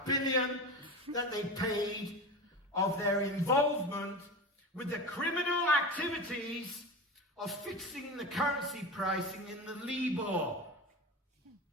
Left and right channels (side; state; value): both; normal; correlation 0.28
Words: that they paid of their involvement with the criminal activities of fixing the currency pricing in the Libor.